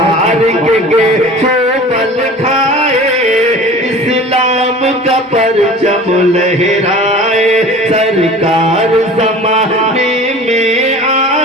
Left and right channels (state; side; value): normal; both; correlation 0.41